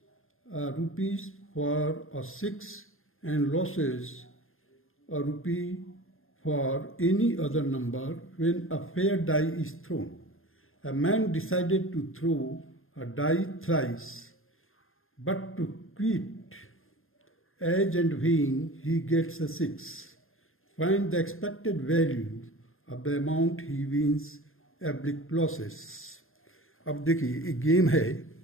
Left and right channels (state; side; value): late; right; 0.60 ms